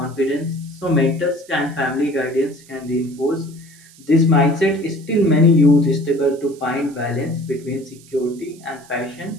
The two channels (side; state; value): right; noise; hiss, 24 dB below the sound